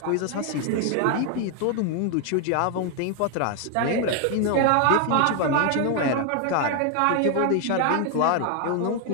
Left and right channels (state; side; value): different; both; correlation 0.01